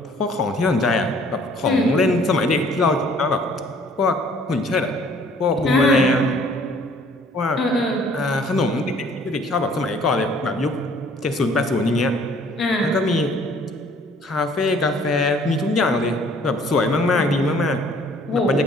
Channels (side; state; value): both; normal; correlation 0.57